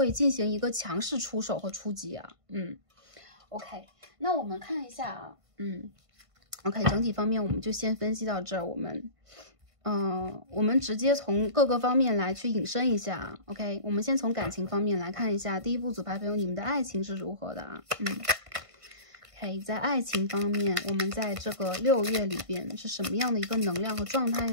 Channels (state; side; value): late; left; 1.5 ms